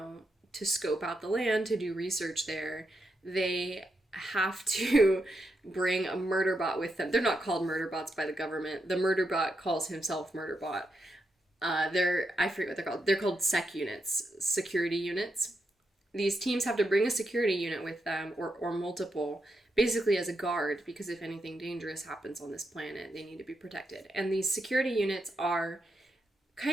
scope out the land, to do research there, they have to bring a murderbot with them. They're not called murderbots by the government. The murderbot calls himself murderbot. I forget what they're called. They're called sec units, security units. These teams have to bring a security unit with them, or multiple, basically as a guard, because if anything dangerous happens on this planet, they need to be protected. And these security units are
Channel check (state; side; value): normal; both; correlation 0.84